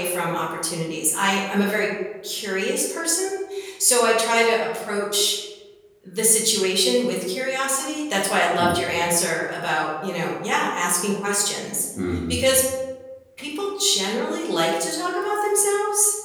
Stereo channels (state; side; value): identical; both; correlation 1.00